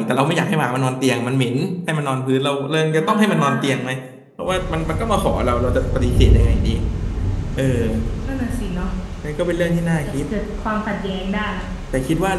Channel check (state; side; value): identical; both; correlation 1.00